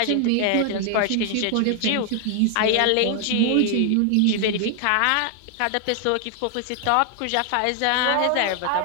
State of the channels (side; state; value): both; different; correlation 0.00